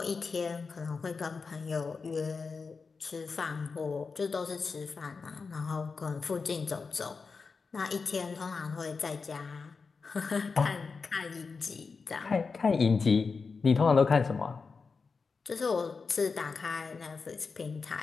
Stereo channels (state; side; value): quieter; right; 4.8 dB